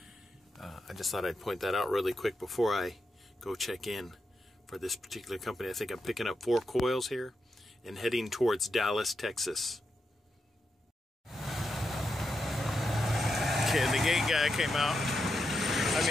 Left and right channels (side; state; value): both; normal; correlation 0.86